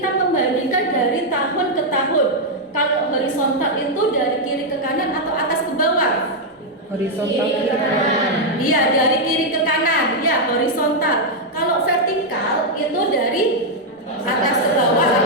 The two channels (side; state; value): both; normal; correlation -0.01